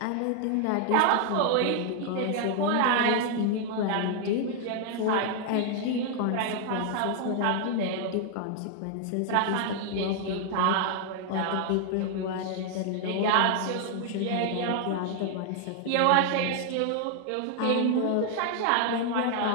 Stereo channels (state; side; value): different; both; correlation 0.00